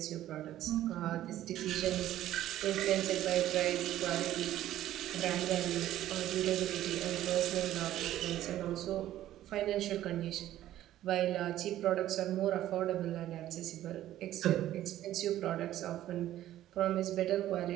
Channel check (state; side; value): quieter; left; 13.3 dB